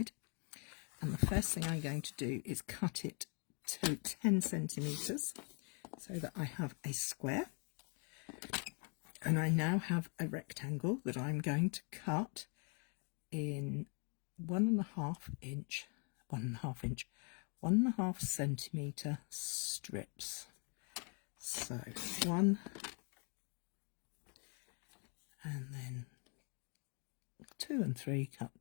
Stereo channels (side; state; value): right; quieter; 38.0 dB